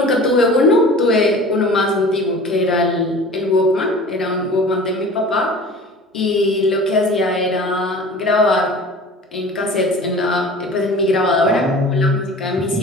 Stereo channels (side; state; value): both; normal; correlation 0.41